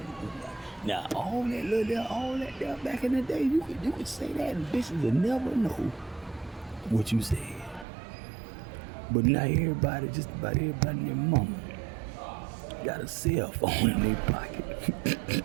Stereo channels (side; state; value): left; drops out; at 7.9 s